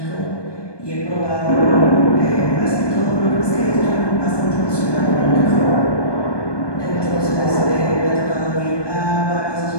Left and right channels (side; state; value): right; late; 1.2 ms